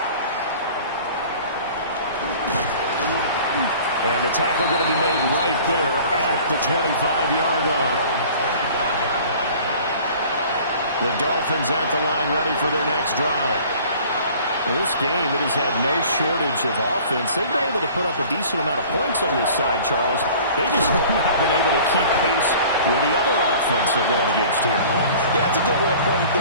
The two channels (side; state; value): both; inverted; correlation -0.47